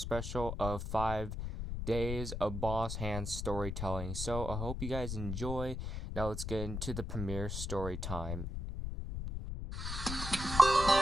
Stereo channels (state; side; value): noise; left; rumble, 4 dB below the sound